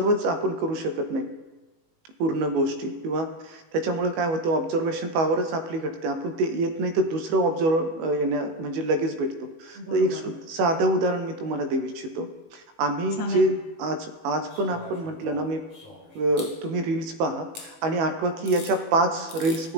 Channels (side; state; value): left; late; 18 ms